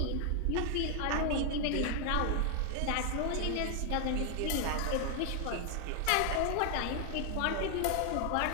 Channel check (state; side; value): different; both; correlation 0.00